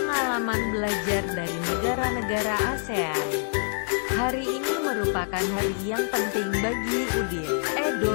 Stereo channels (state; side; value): silent; right; digital silence